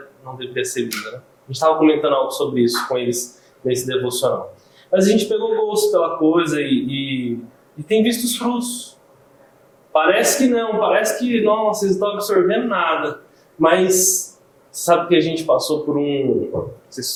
não deveria ser linda, né? A gente estava comentando algo sobre isso com eles nesse devocional. Mas a gente pegou gosto pela coisa e tem visto os frutos. Parece que não, parece que não, vocês não estão absorvendo nada. Mas sabe que a gente passou por um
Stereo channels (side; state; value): both; identical; correlation 1.00